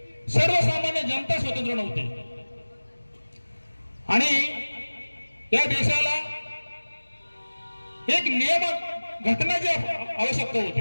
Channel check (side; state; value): both; inverted; correlation -1.00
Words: सर्वसामान्य जनता स्वतंत्र नव्हती आणि या देशाला एक नियम घटनाची आवश्यकता